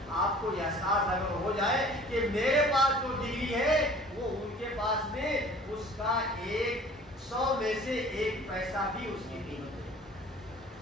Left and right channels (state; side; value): normal; both; correlation 0.48